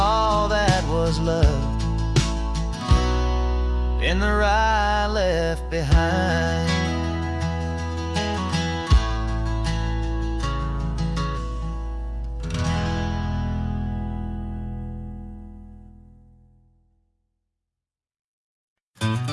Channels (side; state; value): both; identical; correlation 1.00